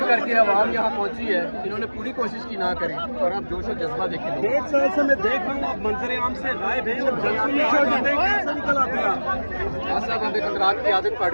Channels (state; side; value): inverted; both; correlation -1.00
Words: करके आवाम यहाँ पहुँची है। इन्होंने पूरी कोशिश की ना करें और आप जोश और जज्बा देखें। 1.5 साल से मैं देख रहा हूँ आप मंजर आम से गायब हैं और जलसों में आ जाते हैं, कैसे निकल आते हैं आप? साहब हमें कंदरात की आदत पड़